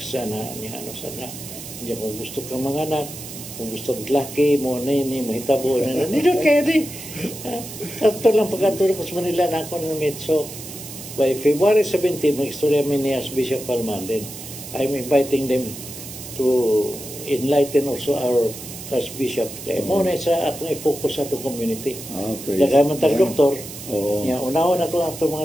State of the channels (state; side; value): noise; right; hiss, 12 dB below the sound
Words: ano sa na, hindi kung gusto ka mga anak, kung gusto laki mo na yun, mahitabo na nito kaya di. Ito lang pagkatulog sa Manila na ako na meet. So, by February 17, mag-istorya mi ni Archbishop Palma, then I'm inviting them to enlighten also our Archbishop. Kaya muna sa atong i-focus sa atong community. Nagaman tag doktor, unawa na ito ang